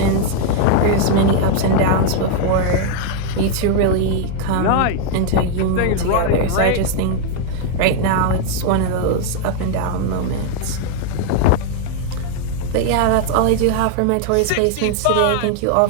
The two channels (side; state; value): both; different; correlation 0.00